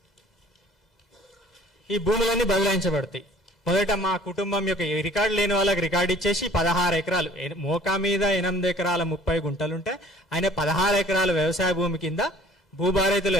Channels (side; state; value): both; normal; correlation 0.53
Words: ఈ భూములన్నీ బదలాయించబడతాయి. మొదట మా కుటుంబం యొక్క రికార్డు లేని వాళ్ళకి రికార్డు ఇచ్చేసి 16 ఎకరాలు, మోకా మీద 8 ఎకరాల 30 గుంటలుంటే ఆయన 16 ఎకరాల వ్యవసాయ భూమి కింద భూభారతిలో